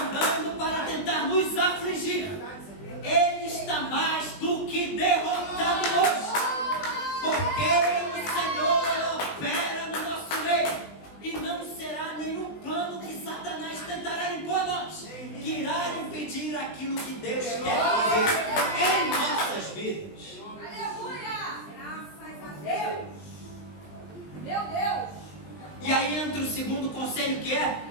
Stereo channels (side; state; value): right; late; 20 ms